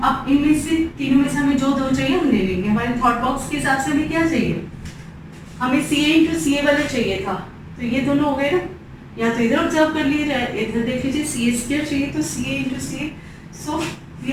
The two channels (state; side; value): identical; both; correlation 1.00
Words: अब इनमें से तीनों में से हमें जो दो चाहिए हम ले लेंगे। हमारे थॉट बॉक्स के हिसाब से हमें क्या चाहिए, हमें सी ए इंटू सी ए वाला चाहिए था, तो ये दोनों हो गए ना, या तो इधर ऑब्जर्व कर लीजिए या इधर देख लीजिए, सी ए स्क्वायर चाहिए तो C A into C A, so we